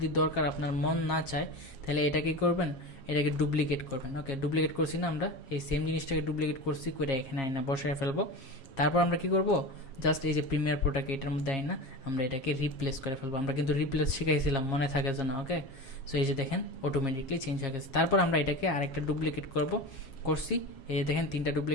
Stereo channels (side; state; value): right; late; 7.4 ms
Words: দরকার আপনার মন না চায়, তাহলে এটাকে করবেন, এটাকে ডুপ্লিকেট করবেন। ওকে, ডুপ্লিকেট করছি না, আমরা এই সেম জিনিসটাকে ডুপ্লিকেট করছি, করে এখানে আইনা বসায় ফেলবো। তারপর আমরা কি করব, জাস্ট এই যে প্রিমিয়ার প্রোটাকে এটার মধ্যে আইনা আমরা এটাকে রিপ্লেস করে ফেলবো। আমরা কিন্তু রিপ্লেস শিখাইছিলাম, মনে থাকে যেন। ওকে, সো এই যে দেখেন অটোমেটিকলি চেঞ্জ হয়ে গেছে। তারপর আমরা এটাকে আরেকটা ডুপ্লিকেট করছি, এই যে দেখেন 3টা